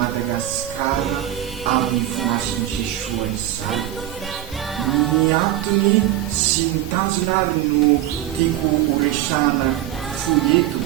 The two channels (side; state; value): left; quieter; 13.2 dB